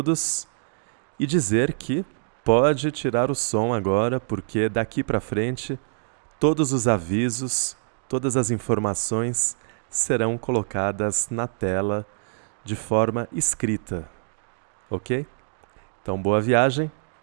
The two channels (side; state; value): left; silent; digital silence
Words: e dizer que pode tirar o som agora, porque daqui para frente todos os avisos, todas as informações serão colocadas na tela de forma escrita, ok? Então, boa viagem,